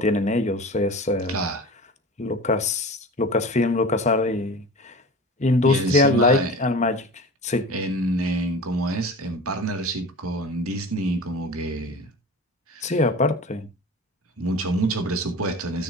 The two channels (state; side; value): normal; both; correlation 0.36